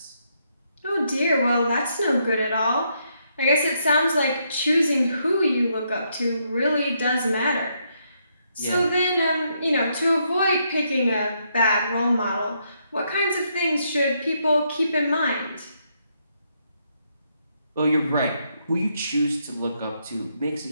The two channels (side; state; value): both; inverted; correlation -0.76